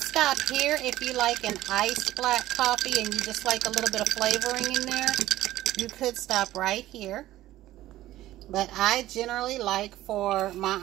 stop here if you like an iced black coffee and you just like a little bit of flavoring in there. You could stop right here. But I generally like for my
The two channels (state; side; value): quieter; left; 15.0 dB